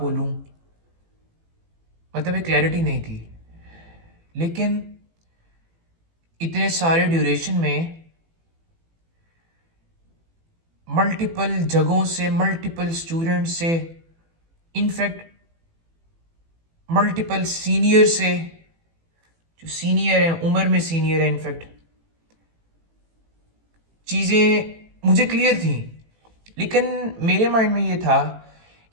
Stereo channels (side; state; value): left; late; 18 ms